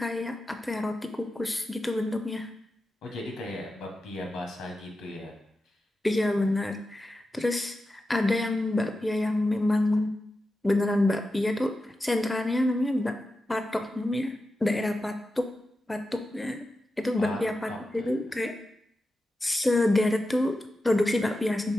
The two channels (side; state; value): both; normal; correlation 0.91